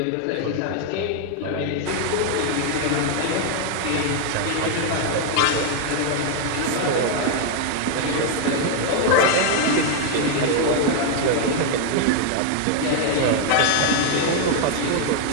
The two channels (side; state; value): both; different; correlation 0.00